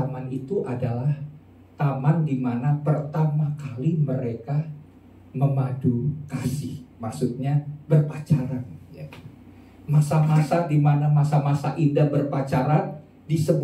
itu adalah taman di mana pertama kali mereka memadu kasih, maksudnya berpacaran. Ya. Masa-masa di mana masa-masa indah berpacaran di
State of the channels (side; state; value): both; identical; correlation 1.00